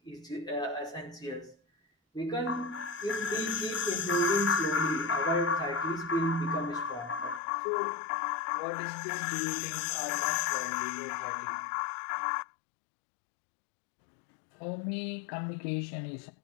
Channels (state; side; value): drops out; right; at 7.4 s